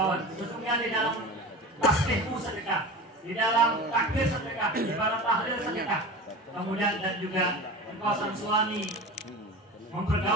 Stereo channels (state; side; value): normal; both; correlation 0.32